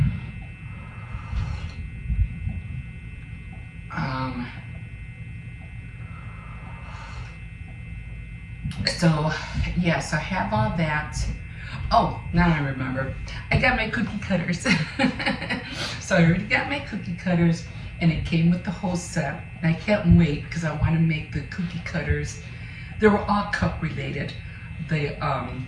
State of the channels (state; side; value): identical; both; correlation 1.00